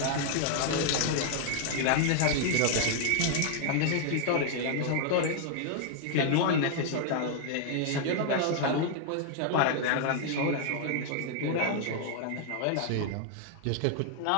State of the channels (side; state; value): both; different; correlation 0.00